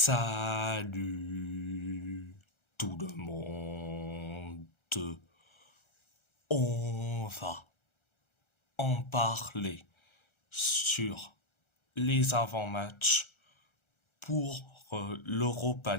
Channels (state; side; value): late; right; 1.3 ms